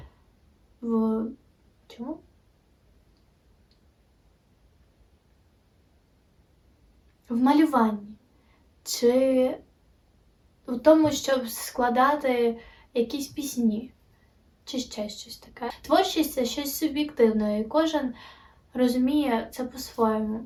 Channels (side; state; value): both; identical; correlation 1.00